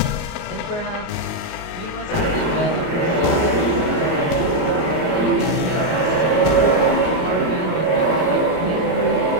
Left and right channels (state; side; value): late; right; 38 ms